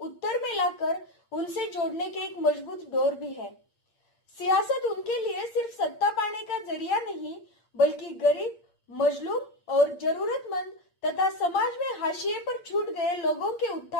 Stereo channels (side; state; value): right; late; 8.6 ms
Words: में लाकर उनसे जोड़ने के एक मजबूत डोर भी है। सियासत उनके लिए सिर्फ सत्ता पाने का जरिया नहीं, बल्कि गरीब, मजलूम और जरूरतमंद तथा समाज में हाशिए पर छूट गए लोगों के